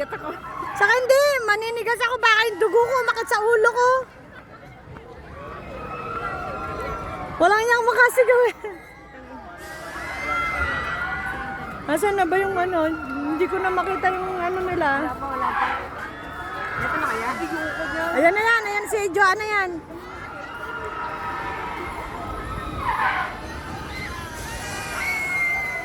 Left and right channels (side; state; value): both; identical; correlation 1.00